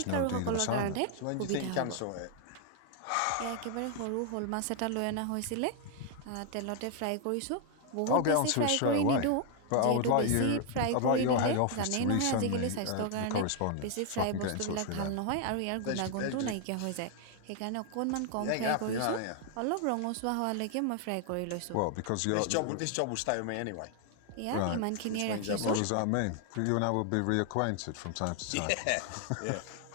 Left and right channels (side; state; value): both; different; correlation 0.00